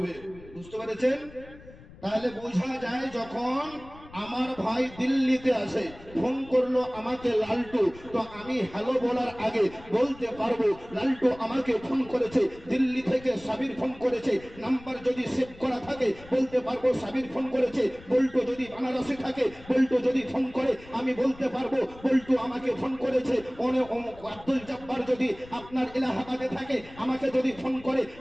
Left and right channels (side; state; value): left; noise; rumble, 20 dB below the sound